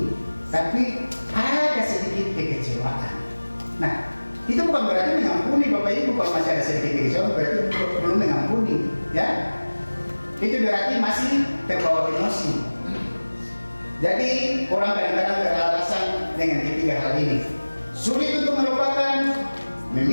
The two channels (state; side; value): inverted; both; correlation -1.00